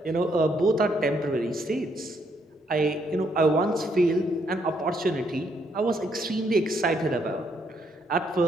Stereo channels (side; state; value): both; normal; correlation 0.73